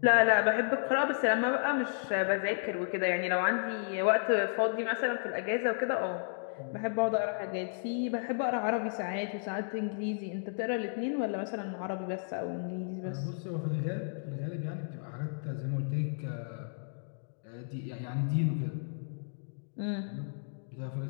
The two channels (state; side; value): silent; right; digital silence